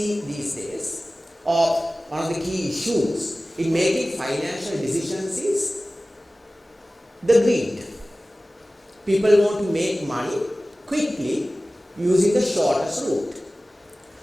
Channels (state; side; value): normal; both; correlation 0.97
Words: these days, or one of the key issues in making financial decisions is the greed. People want to make money quickly using the shortest route.